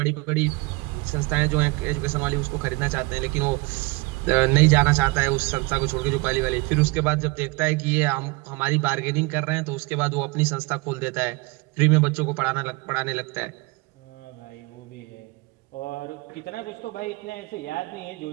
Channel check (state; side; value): quieter; left; 26.2 dB